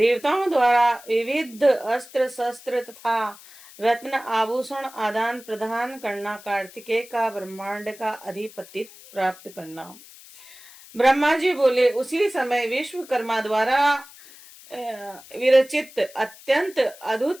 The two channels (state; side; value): noise; left; hiss, 20 dB below the sound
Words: द्वारा विविध अस्त्र शस्त्र तथा रत्न आभूषण आदान प्रदान करना, कार्तिकेय का ब्रह्मांड का अधिपति प्राप्त करना। ब्रह्मा जी बोले, उसी समय विश्वकर्मा द्वारा विरचित अत्यंत